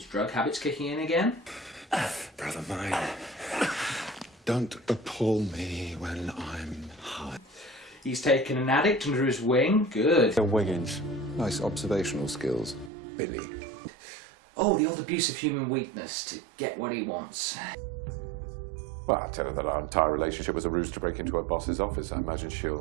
drug habit's kicking in again. Brother mine, don't appall me when I'm high. He's taken an addict under his wing. Good. Wiggins. Nice observational skills, Billy. Oh, the old abuse of human weakness to get what he wants. Well, I tell her that our entire relationship was a ruse to break into her boss's office. I imagine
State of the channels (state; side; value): drops out; left; at 12.9 s